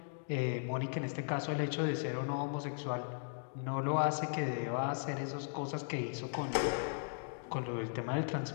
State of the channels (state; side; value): silent; right; digital silence